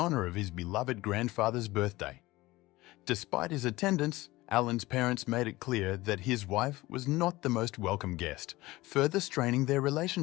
of his beloved grandfather's birthday. Despite his attendance, Allan's parents made it clear that his wife was not the most welcome guest, further straining their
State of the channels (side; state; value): right; quieter; 19.3 dB